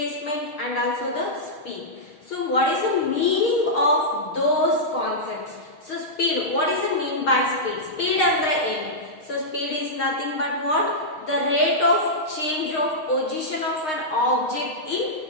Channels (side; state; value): right; late; 6.4 ms